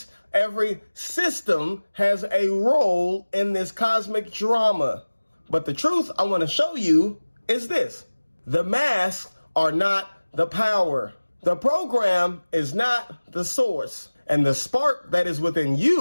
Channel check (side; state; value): both; inverted; correlation -1.00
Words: every system has a role in this cosmic drama. But the truth I want to show you is this. The masks are not the power. The program is not the source. And the spark that is within